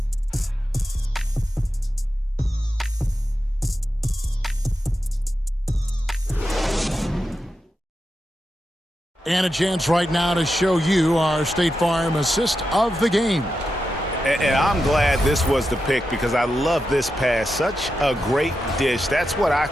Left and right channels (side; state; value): both; normal; correlation 0.89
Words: And a chance right now to show you our State Farm assist of the game. And I'm glad this was the pick because I love this pass. Such a great dish. That's what I